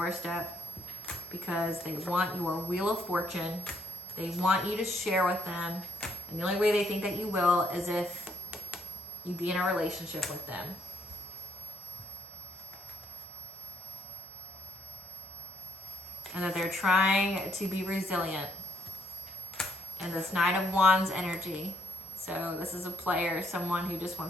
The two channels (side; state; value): both; normal; correlation 0.72